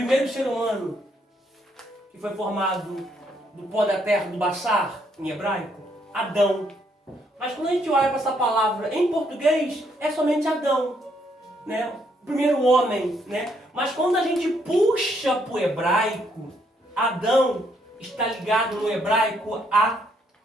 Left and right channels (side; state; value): both; normal; correlation 0.72